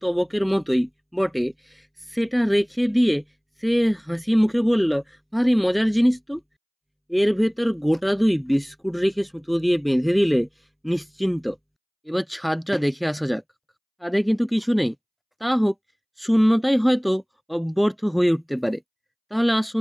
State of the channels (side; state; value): both; identical; correlation 1.00